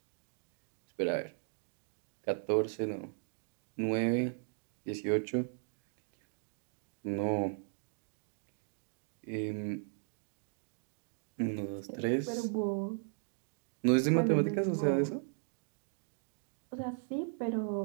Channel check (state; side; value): silent; left; 53 dB below the other